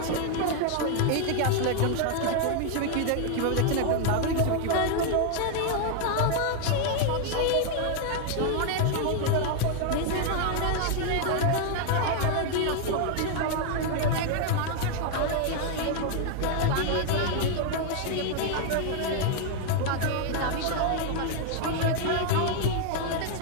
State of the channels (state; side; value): different; both; correlation 0.00